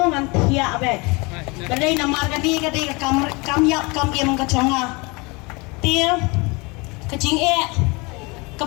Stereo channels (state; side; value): quieter; right; 27.1 dB